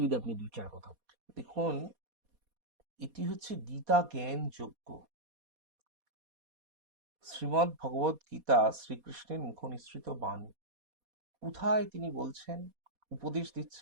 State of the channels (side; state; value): left; late; 4.2 ms